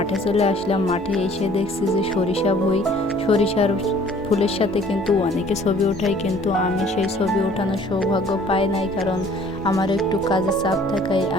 চলে আসলাম। মাঠে এসে দেখছি যে সরিষার ফুলের সাথে কিন্তু অনেকে ছবি ওঠায়, কিন্তু আমি সেই ছবি ওঠানোর সৌভাগ্য পাই নাই, কারণ আমার একটু কাজের চাপ থাকায়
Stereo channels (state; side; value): normal; both; correlation 0.55